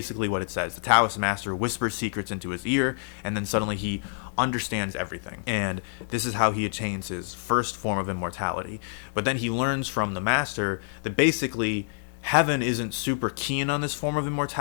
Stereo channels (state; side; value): silent; right; digital silence